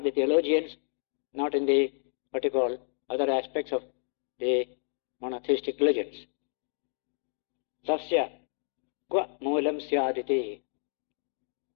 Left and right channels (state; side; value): silent; right; digital silence